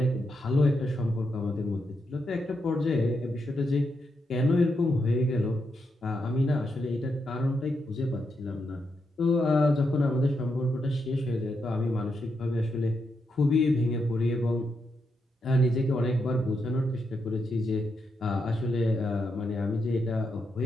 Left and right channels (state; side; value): normal; both; correlation 0.83